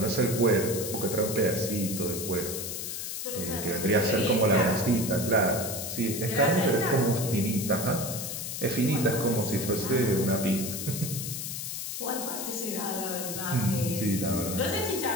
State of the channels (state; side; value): noise; left; hiss, 5 dB below the sound